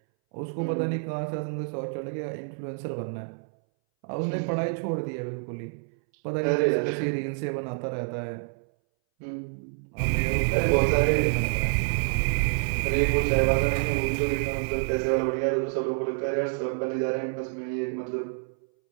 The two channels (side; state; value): left; silent; 60 dB below the other